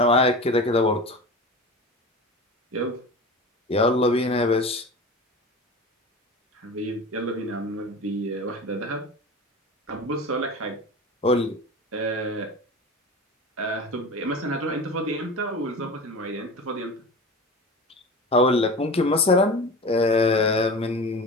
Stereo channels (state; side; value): normal; both; correlation 0.32